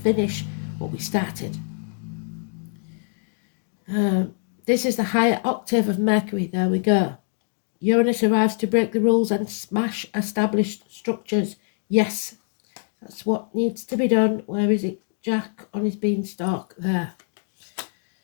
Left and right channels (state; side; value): silent; right; digital silence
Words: what we started. This is the higher octave of Mercury. There we go. Uranus arrives to break the rules and smash established structures. Yes, that's what needs to be done. Where is it? Jack on his beanstalk there.